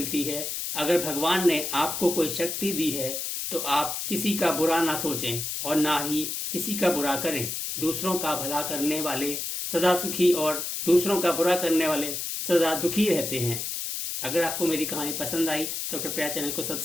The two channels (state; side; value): noise; left; hiss, 4 dB below the sound